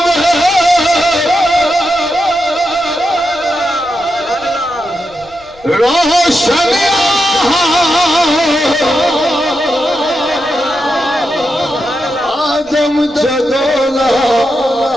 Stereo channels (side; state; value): left; noise; rumble, 27 dB below the sound